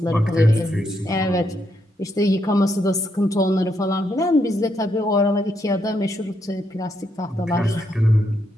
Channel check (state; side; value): normal; both; correlation 0.78